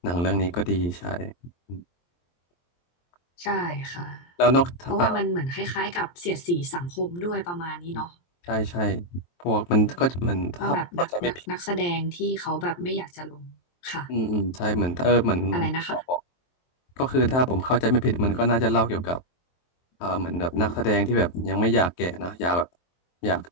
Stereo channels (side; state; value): right; late; 23 ms